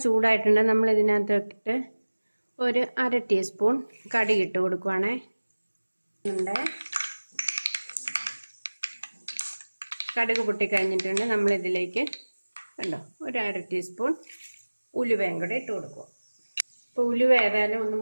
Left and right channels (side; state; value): both; inverted; correlation -1.00